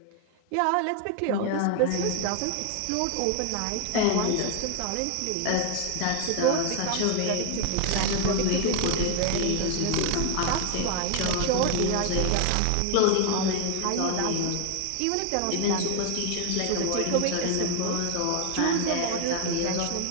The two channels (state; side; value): different; both; correlation 0.00